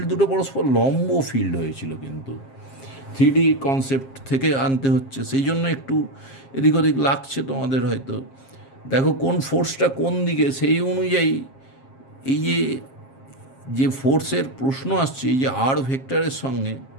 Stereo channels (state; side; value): late; right; 7.5 ms